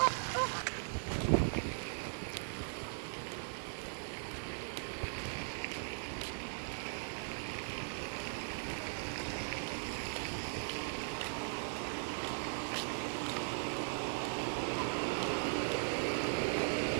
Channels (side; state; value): left; silent; digital silence